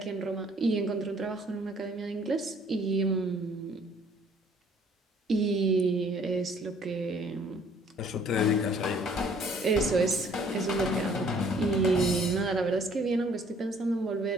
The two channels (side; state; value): both; normal; correlation 0.59